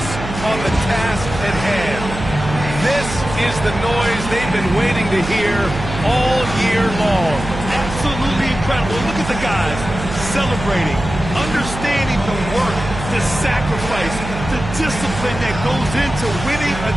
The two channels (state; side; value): noise; right; hum, 8 dB below the sound